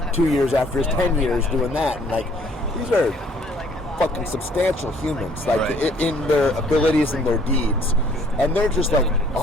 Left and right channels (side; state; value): both; normal; correlation 0.60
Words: 2 years after his 10 years doing that. And like, these are fucking substantial humans, like in their abilities and their deeds, and they're just like,